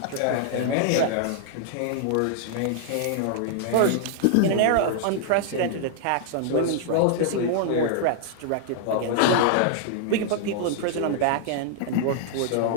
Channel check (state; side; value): different; both; correlation -0.01